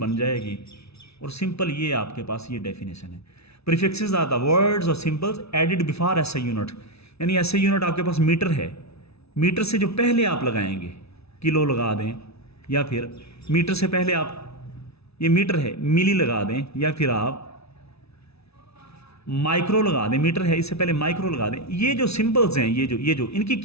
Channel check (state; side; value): late; right; 0.79 ms